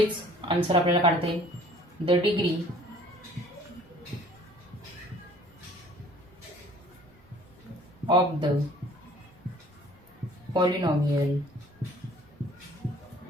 आन्सर आपल्याला काढता येईल, the degree of the polynomial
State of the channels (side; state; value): both; normal; correlation 0.53